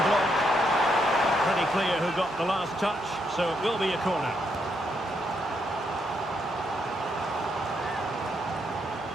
block. Pretty clear who got the last touch, so it will be a corner.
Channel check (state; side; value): normal; both; correlation 0.77